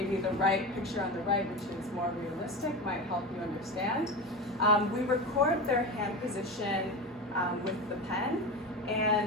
the picture on the right, which is more realistic, might help you understand. We record their hand position with the pen,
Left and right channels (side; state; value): both; normal; correlation 0.24